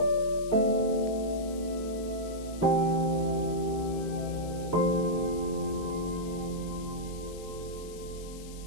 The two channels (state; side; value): noise; left; hiss, 18 dB below the sound